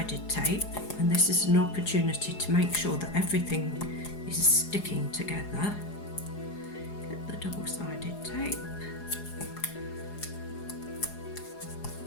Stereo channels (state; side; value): late; right; 4.8 ms